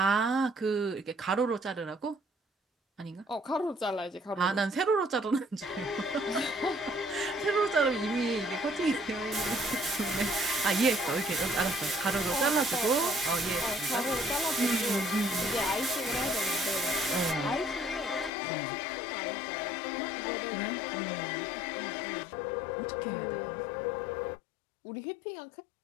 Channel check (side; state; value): right; drops out; at 18.3 s